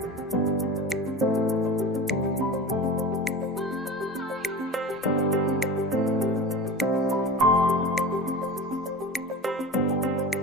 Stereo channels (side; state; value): both; normal; correlation 0.32